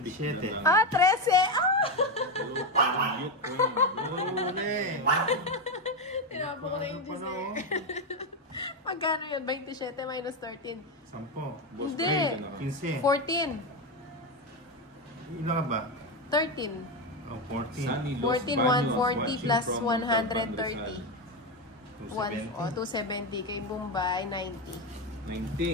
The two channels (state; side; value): normal; both; correlation 0.11